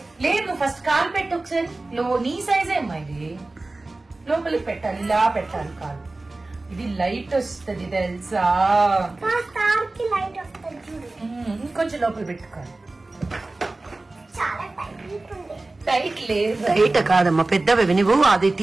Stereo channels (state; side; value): quieter; left; 3.1 dB